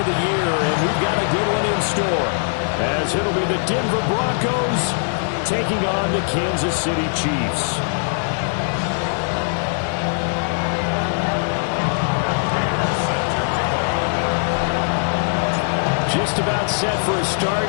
the year, and we've got a good one in store, as it'll be the Denver Broncos taking on the Kansas City Chiefs. Just about set for a start.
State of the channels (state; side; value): silent; right; digital silence